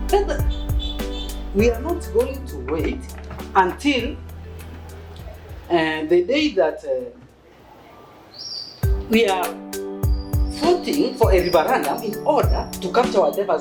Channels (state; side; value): identical; both; correlation 1.00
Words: We are not going to wait until the day that we are voting for a referendum in order to capture whatever